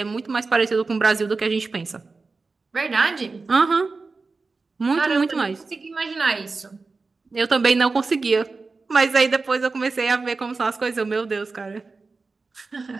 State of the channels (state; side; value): quieter; left; 4.0 dB